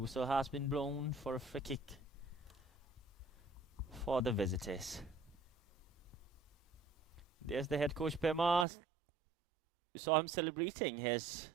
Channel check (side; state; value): left; drops out; at 8.7 s